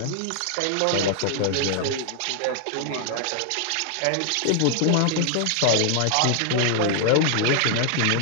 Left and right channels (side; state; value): both; different; correlation 0.00